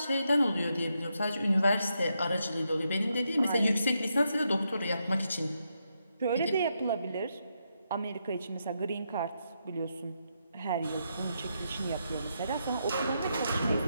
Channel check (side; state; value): both; inverted; correlation -0.81